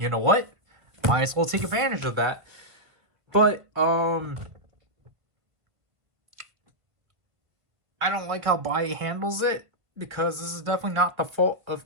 know what? Might as well take advantage of that. But, I don't like how Buy handles it, because this is definitely not the fault of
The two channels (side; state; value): left; late; 1.8 ms